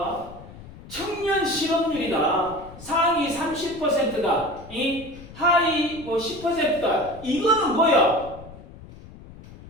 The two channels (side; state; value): left; noise; rumble, 17 dB below the sound